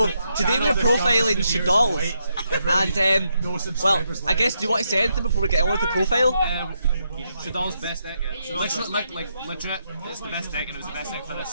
today we're profiling Dolls, and well, I guess do you want to say anything before we get on with the profile? Dolls' best deck. Yeah. Legit, it's the best deck, and it was the best deck for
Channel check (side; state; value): both; inverted; correlation -0.80